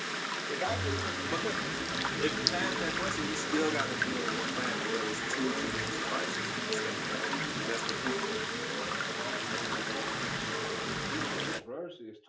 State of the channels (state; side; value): identical; both; correlation 1.00